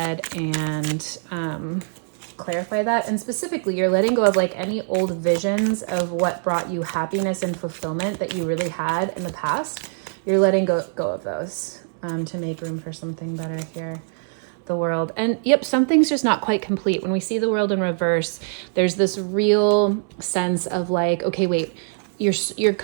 and clarify that. And specifically, you're letting go of like any old visions of what brought you happiness and fulfillment that you really had in the past. You're letting go of those to make room for something better here. The world. And yep, something's just not quite complete. When we see the world in reverse, there's this real sense of like, okay, wait,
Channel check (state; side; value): silent; left; 62 dB below the other